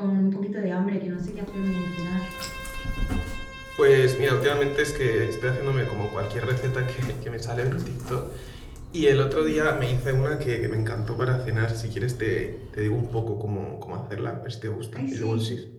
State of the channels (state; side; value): identical; both; correlation 1.00